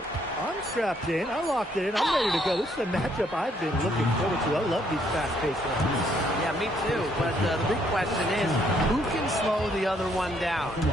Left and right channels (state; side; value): normal; both; correlation 0.69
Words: I'm strapped in. I locked it in. I'm ready to go. This is a matchup I've been looking forward to. I love these fast-paced ones. Yeah, me too. But the big question is, who can slow the other one down?